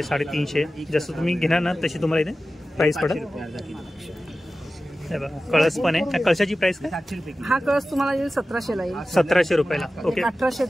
जसं तुम्ही घेणार ना तशी तुम्हाला इथे प्राइस पडेल. हे बघा कळस पण आहे. कळशाची प्राइस काय? हा कळस तुम्हाला येईल 1700 ला येईल. 1700 रुपयाला. ओके 1800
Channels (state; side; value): normal; both; correlation 0.95